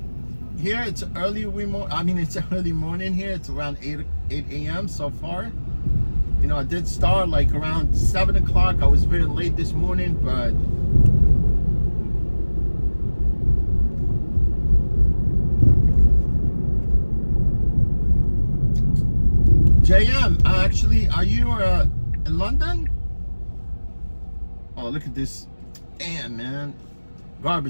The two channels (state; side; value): inverted; both; correlation -1.00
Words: Here it's early it's early morning here. It's around 8 a.m. so far. You know, I did start like around 7 o'clock. I was very late this morning, but JM, actually, are you in London? Oh, look at this. Damn, man.